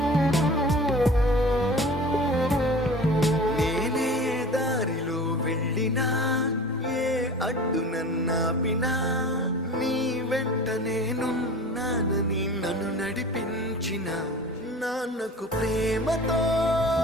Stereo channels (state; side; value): normal; both; correlation 0.39